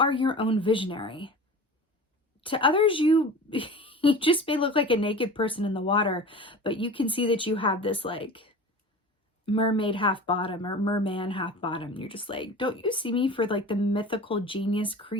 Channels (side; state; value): both; normal; correlation 0.36